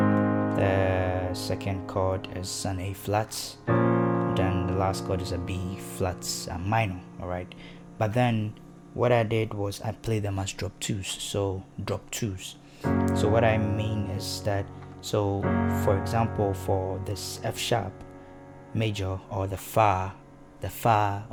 second chord is an A flat. Then the last chord is a B flat minor. All right, but then what I did was I played them as drop 2s. So drop 2s. So what I mean is that, so for example, for this F sharp major, or the fa,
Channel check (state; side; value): identical; both; correlation 1.00